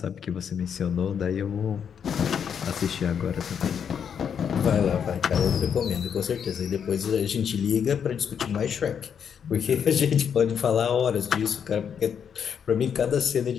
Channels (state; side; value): quieter; right; 7.7 dB